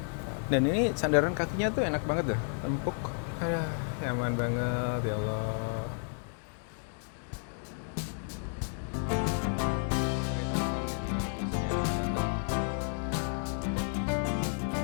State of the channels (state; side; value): silent; right; 57 dB below the other